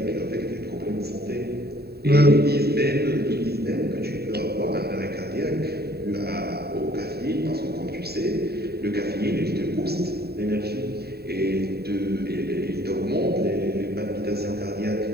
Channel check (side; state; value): left; late; 0.46 ms